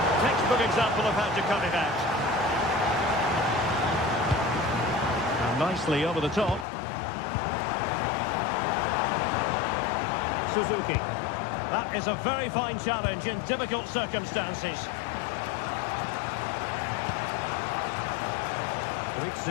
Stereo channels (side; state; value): right; drops out; at 6.7 s